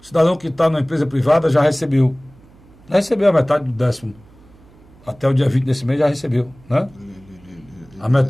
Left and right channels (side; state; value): right; noise; hum, 26 dB below the sound